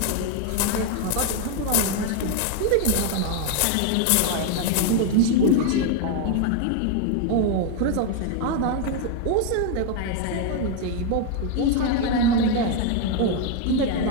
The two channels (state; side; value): different; both; correlation 0.01